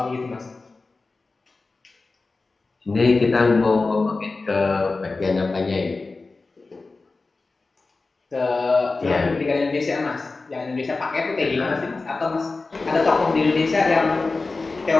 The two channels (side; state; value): right; quieter; 3.7 dB